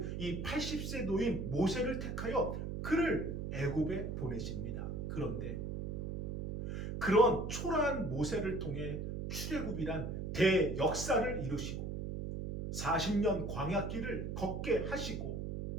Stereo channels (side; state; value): right; noise; hum, 4 dB below the sound